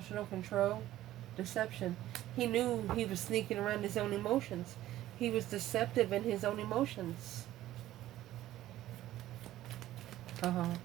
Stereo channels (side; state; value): left; quieter; 14.2 dB